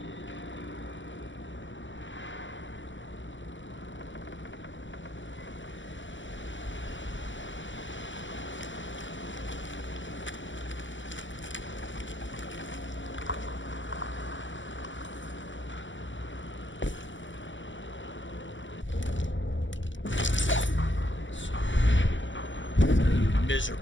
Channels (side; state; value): right; late; 0.55 ms